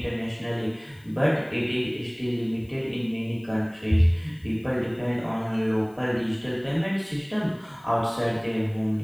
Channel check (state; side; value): noise; left; hiss, 30 dB below the sound